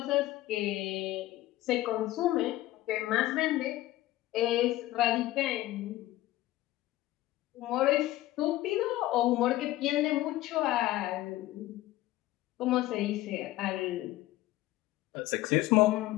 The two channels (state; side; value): quieter; right; 16.3 dB